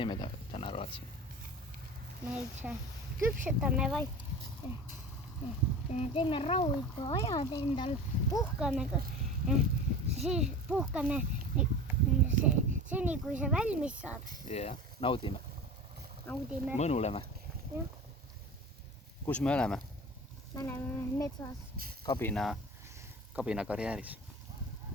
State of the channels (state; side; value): normal; both; correlation 0.35